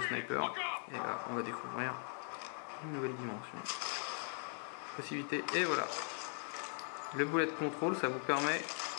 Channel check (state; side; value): silent; right; 51 dB below the other